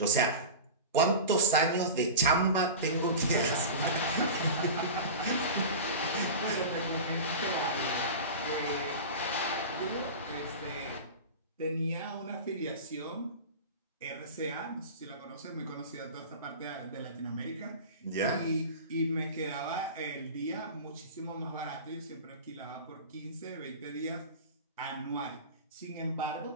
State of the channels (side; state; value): both; inverted; correlation -0.30